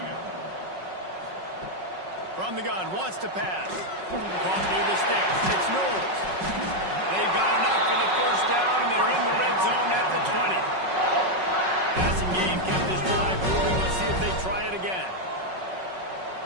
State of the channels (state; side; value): late; left; 5.4 ms